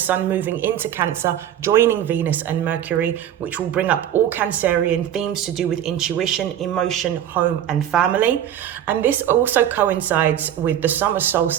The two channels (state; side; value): quieter; left; 10.6 dB